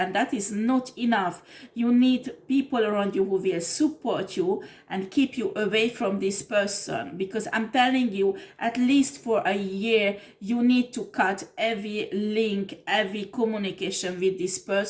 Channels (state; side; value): identical; both; correlation 1.00